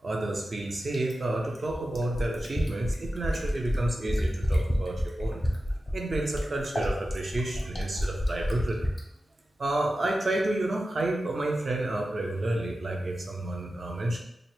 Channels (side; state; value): both; normal; correlation 0.93